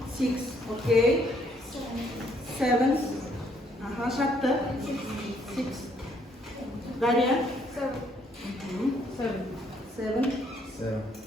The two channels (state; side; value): normal; both; correlation 0.68